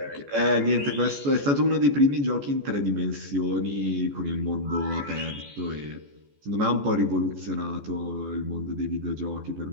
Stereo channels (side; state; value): left; late; 14 ms